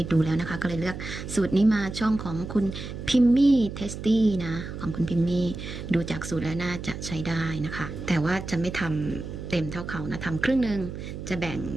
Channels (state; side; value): noise; right; hum, 8 dB below the sound